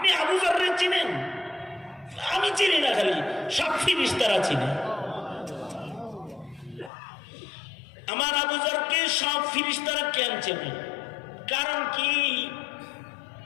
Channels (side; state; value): right; drops out; at 6.9 s